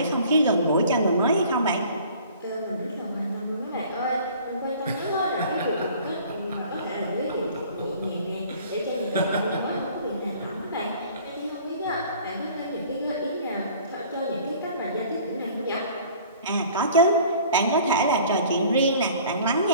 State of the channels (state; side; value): inverted; both; correlation -0.49